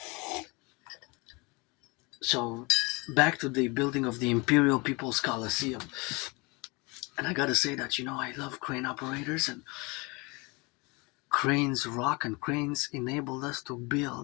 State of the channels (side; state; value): right; quieter; 27.3 dB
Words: So back to the building of the Imperial People's Colliseum. And I gotta say that, I love crane operators, and cranes rock, and cranes enabled us to